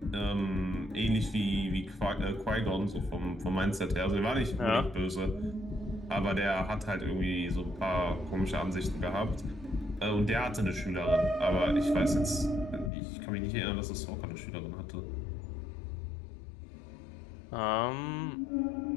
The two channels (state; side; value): drops out; right; at 12.9 s